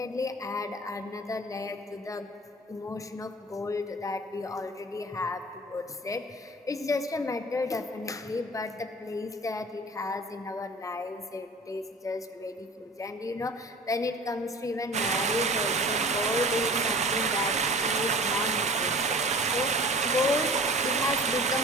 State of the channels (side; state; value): both; normal; correlation 0.42